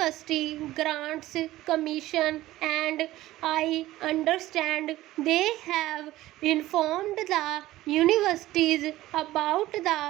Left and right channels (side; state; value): left; quieter; 16.1 dB